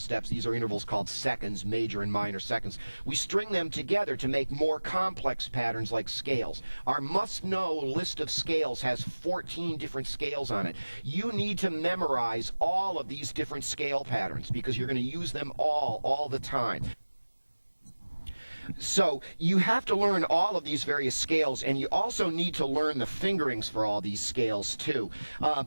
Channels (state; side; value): inverted; both; correlation -1.00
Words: These are intervals called seconds, major and minor seconds. We string them together to make more complex patterns like scales. Our must-know list of scales has 14 different scales on it. You need to memorize all of these different scale patterns because you're going to use them all the time. So you have to learn all of these various scales, and you also need to learn the fingerings for all these scales too.